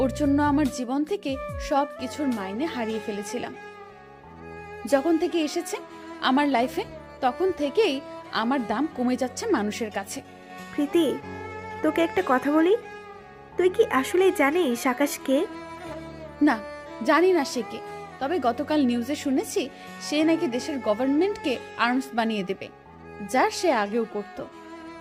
ওর জন্য আমার জীবন থেকে সব কিছুর মাইনে হারিয়ে ফেলেছিলাম। যখন থেকে এসেছে আমার লাইফে, তখন থেকেই আমার দাম কমে যাচ্ছে মানুষের কাছে। প্রীতি, তোকে একটা কথা বলি, তুই কি আসলেই জানিস আকাশ কে? না, জানি না সে কে, তবে গতকাল নিউজে শুনেছি সে নাকি দেশের গভর্নমেন্টকে আর্মস বানিয়ে দেবে, যা সে আগেও করত।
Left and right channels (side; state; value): both; identical; correlation 1.00